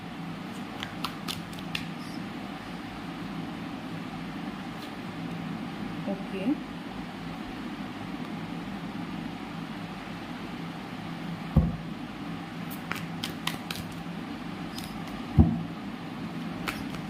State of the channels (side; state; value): both; identical; correlation 1.00